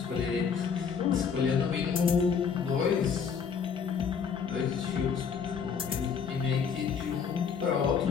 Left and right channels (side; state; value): right; quieter; 6.4 dB